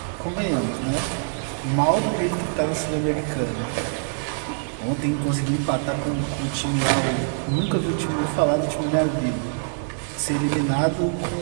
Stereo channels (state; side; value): silent; left; digital silence